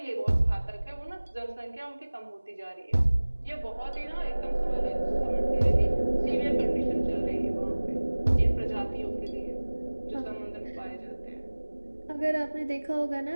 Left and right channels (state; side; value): inverted; both; correlation -1.00